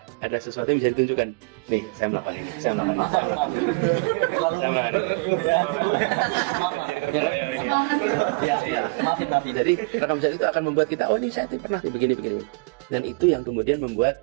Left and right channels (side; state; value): left; quieter; 30.1 dB